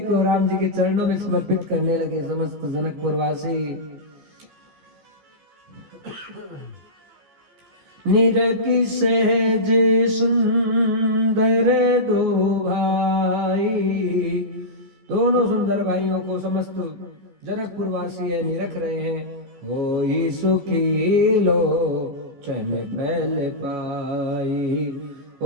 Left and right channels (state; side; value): late; left; 14 ms